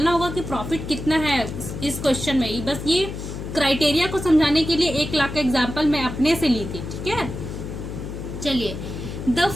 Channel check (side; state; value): left; noise; hum, 7 dB below the sound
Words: होगा कि प्रॉफिट कितना है इस क्वेश्चन में। बस ये क्राइटेरिया को समझाने के लिए 1 लाख का एग्जाम्पल मैं अपने से ली थी। ठीक है, चलिए। The